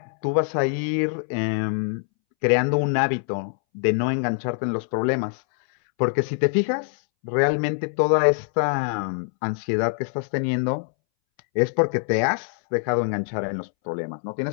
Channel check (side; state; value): right; silent; 63 dB below the other